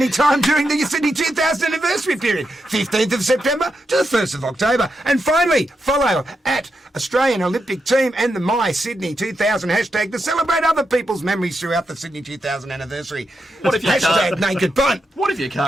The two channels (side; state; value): both; normal; correlation 0.85